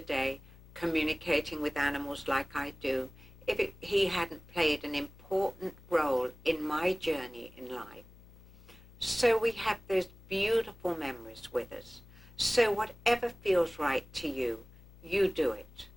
communicating with animals like I do, if he hadn't played an important role in my journey in life. So we have those beautiful memories with us. So whatever feels right to you, you do it.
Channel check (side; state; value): left; noise; hum, 22 dB below the sound